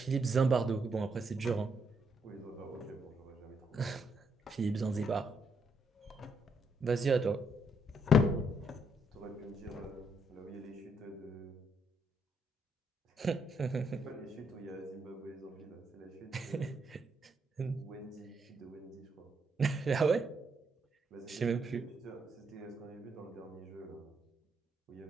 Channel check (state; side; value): normal; both; correlation 0.76